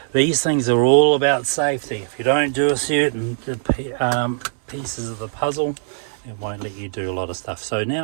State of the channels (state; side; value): silent; left; digital silence